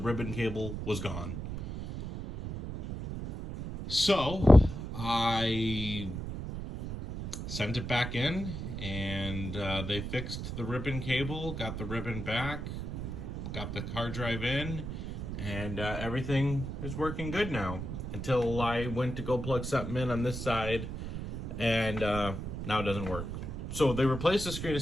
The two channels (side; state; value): right; noise; rumble, 6 dB below the sound